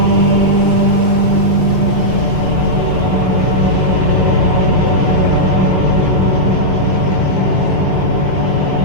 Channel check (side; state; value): left; late; 5.7 ms